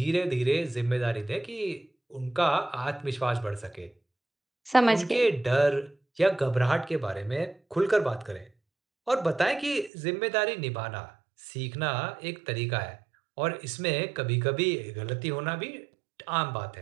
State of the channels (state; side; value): drops out; left; at 9.9 s